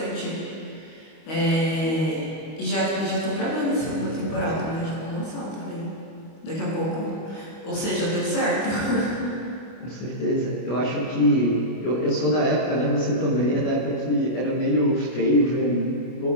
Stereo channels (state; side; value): late; right; 25 ms